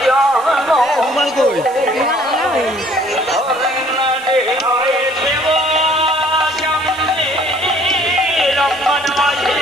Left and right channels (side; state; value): right; noise; hiss, 21 dB below the sound